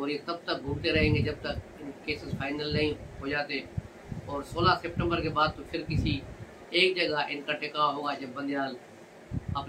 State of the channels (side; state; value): both; identical; correlation 1.00